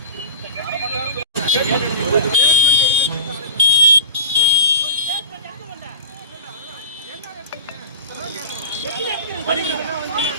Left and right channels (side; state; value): both; inverted; correlation -0.30